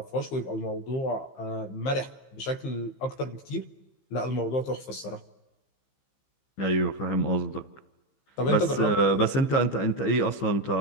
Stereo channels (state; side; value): late; right; 15 ms